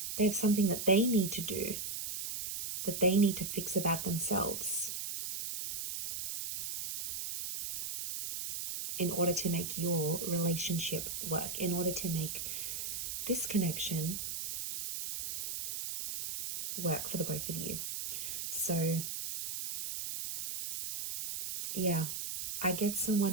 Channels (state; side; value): noise; right; hiss, 4 dB below the sound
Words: They have something that they need to do, that they need to fix about themselves in order to make your relationship work, in order to make this connection work for the both of you. So yeah, I get